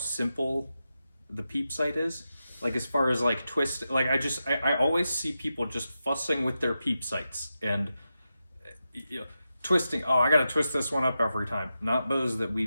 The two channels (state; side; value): inverted; both; correlation -0.90